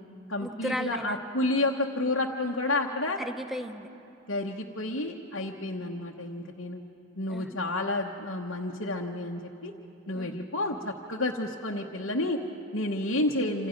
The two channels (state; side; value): normal; both; correlation 0.11